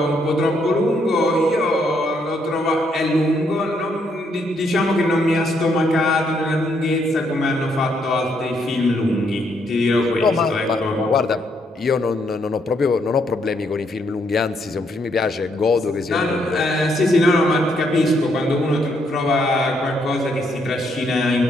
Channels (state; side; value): normal; both; correlation 0.74